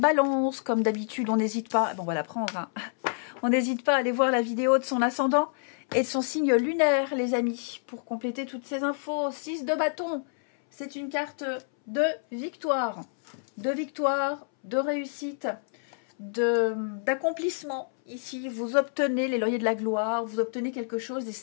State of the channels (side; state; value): right; silent; 59 dB below the other